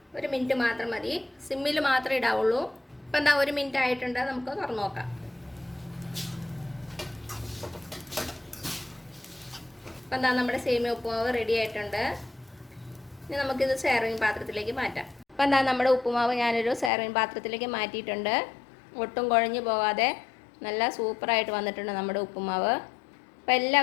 1 മിനിറ്റ് മാത്രം മതി, സിമ്മിൽ മാത്രമേ ഇടാവുള്ളൂ. ഇപ്പം എന്താ 1 മിനിറ്റ് ആയിട്ടുണ്ട്, നമുക്ക് തുറന്നു നോക്കാം. അപ്പം എന്താ നമ്മുടെ സേമിയ ഉപ്പുമാവ് റെഡി ആയിട്ടുണ്ട്. ഇനി നമുക്കിത് സെർവിങ് പാത്രത്തിലേക്ക് മാറ്റാം. അപ്പം എന്താ നമ്മുടെ ഉപ്പുമാവ് ഞാനൊരു സെർവിങ് പാത്രത്തിലേക്ക് മാറ്റിയിട്ടുണ്ട്. ഒട്ടും കുഴഞ്ഞു പോകാതെ നല്ല സൂപ്പറായിട്ട് വന്നിട്ടുണ്ട് നമ്മുടെ ഉപ്പുമാവ്. അപ്പോൾ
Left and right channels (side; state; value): right; drops out; at 16.9 s